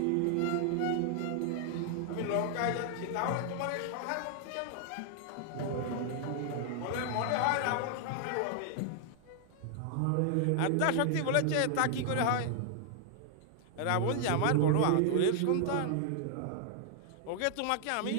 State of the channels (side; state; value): both; different; correlation 0.00